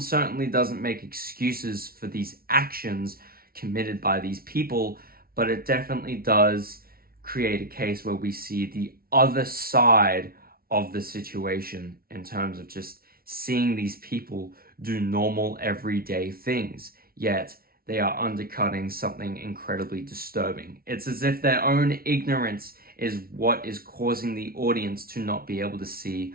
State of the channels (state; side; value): late; left; 0.44 ms